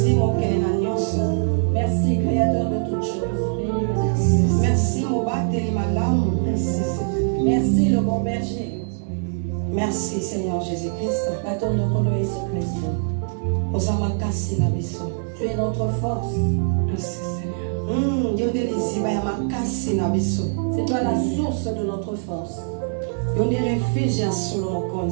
mon Kélénagnos. Merci Créateur de toutes choses. Merci mon Bateli Malam. Merci le bon berger. Merci Seigneur Jésus-Christ. Tu es notre force. Merci Seigneur. C'est toi la source de notre force.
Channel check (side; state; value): left; silent; digital silence